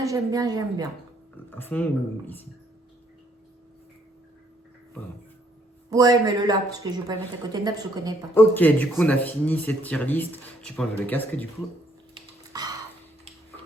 à fond ou ici? Pardon. Ouais, mais le là, parce que je vais pas le mettre à côté de Naps, je connais pas. Ok, du coup on a fini cette tier list. Tu peux enlever le casque du coup.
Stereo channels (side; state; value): both; normal; correlation 0.68